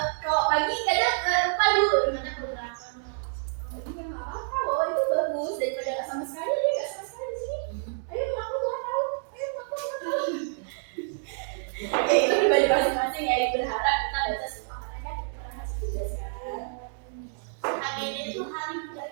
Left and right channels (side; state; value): left; silent; digital silence